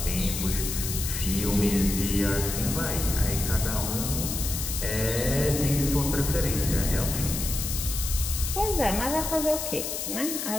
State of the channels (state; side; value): noise; left; hiss, 4 dB below the sound